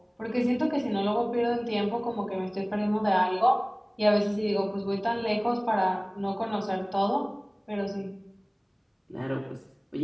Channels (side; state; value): both; identical; correlation 1.00